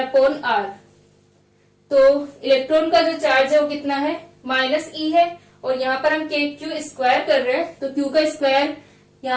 आर। तो इलेक्ट्रॉन का जो चार्ज है वो कितना है, -e है, और यहाँ पर हम kq² कर रहे हैं, तो q का स्क्वायर,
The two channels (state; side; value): identical; both; correlation 1.00